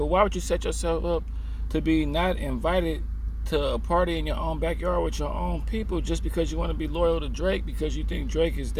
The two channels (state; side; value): identical; both; correlation 1.00